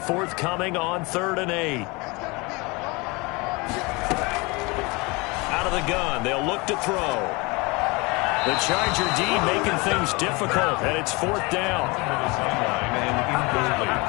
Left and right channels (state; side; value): quieter; right; 26.3 dB